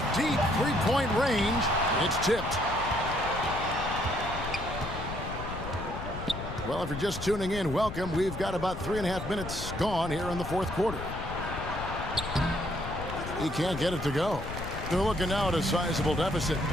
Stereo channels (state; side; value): noise; left; rumble, 8 dB below the sound